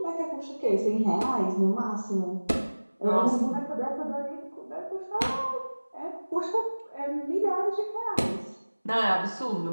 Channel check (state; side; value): inverted; both; correlation -1.00